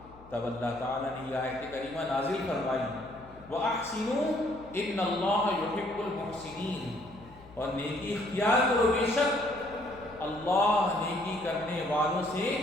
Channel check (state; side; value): noise; left; hum, 22 dB below the sound